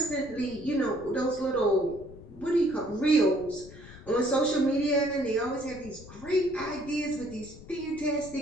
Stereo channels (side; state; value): left; noise; rumble, 18 dB below the sound